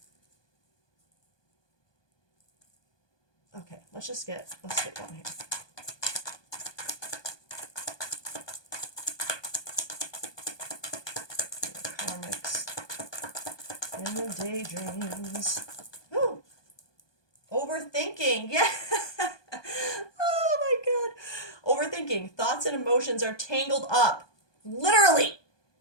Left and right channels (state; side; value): late; right; 1.2 ms